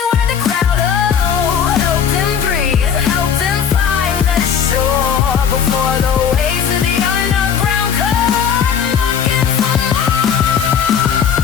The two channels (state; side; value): quieter; right; 7.7 dB